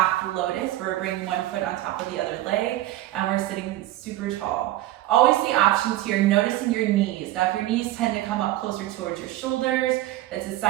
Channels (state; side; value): quieter; left; 15.4 dB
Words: Lotus, where we're bringing one foot on top of the other leg, and we're sitting super tall. Always the options here, noticing your knees. Now, if your knees tend to come up closer towards your shoulders, it's a